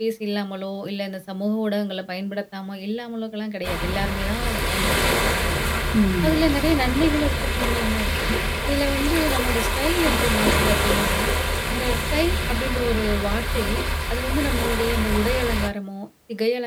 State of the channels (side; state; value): both; identical; correlation 1.00